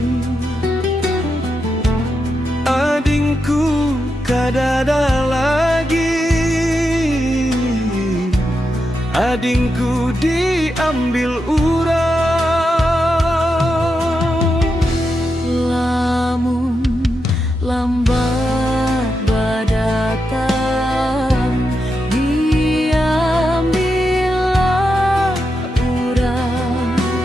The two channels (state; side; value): normal; both; correlation 0.86